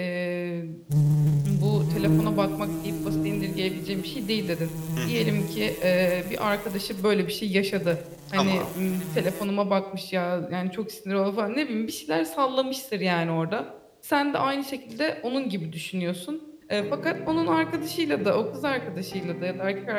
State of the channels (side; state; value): both; identical; correlation 1.00